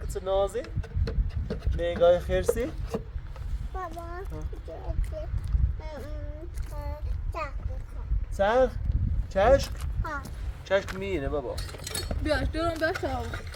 نازی نگاه خیرسی بابا سر چشک ها. چشک میینه بابا بیاش درم بخواه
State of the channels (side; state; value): both; identical; correlation 1.00